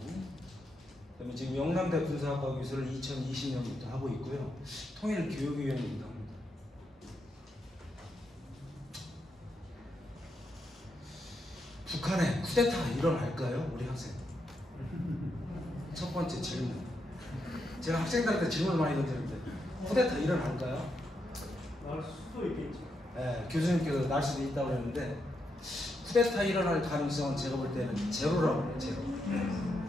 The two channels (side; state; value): both; normal; correlation 0.82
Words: 그다음에 지금 영남대 군사학과 교수를 2020년부터 하고 있고요. 통일교육위원이기도 합니다. 북한에 쿠데타가 일어날까요? 우리 학생. 첫 번째 질문. 제가 학생들한테 질문을 많이 던지는데 쿠데타 일어날까요? 날 수도 있겠죠. 네, 교수님께서 날 수도 있다고 그랬는데 쿠데타 일어날 가능성은 제가 볼 때는 제로라고 해요. 제로.